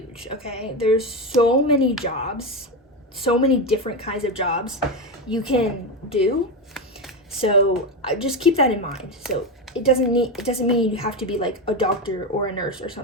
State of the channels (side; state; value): both; normal; correlation 0.14